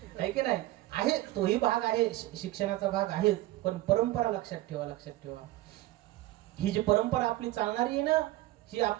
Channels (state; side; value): quieter; left; 17.1 dB